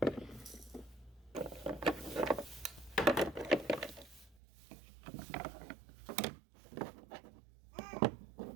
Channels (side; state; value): left; drops out; at 4.4 s